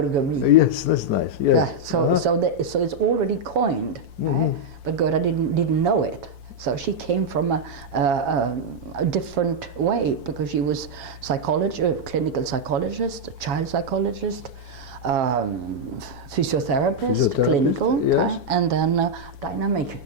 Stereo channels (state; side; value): late; left; 5.7 ms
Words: Yes, that's nice. Yes. Yeah. So it's already coined, right? But Gerda didn't know it. So she came from a different way, because she was clinical psychologist, child psychologist, physiotherapist, clinical, yes. And then dynamic